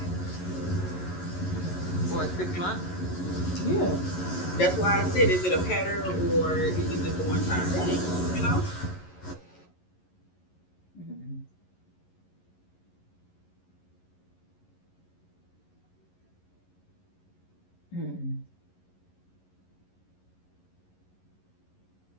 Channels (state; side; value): late; right; 11 ms